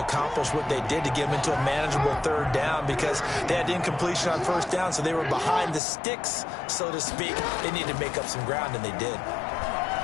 accomplish what they did to get them into a manageable 3rd down because they had incompletion on 1st down, so they were behind the sticks, so to speak. They needed to make up some ground, and they did.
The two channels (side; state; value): right; drops out; at 5.8 s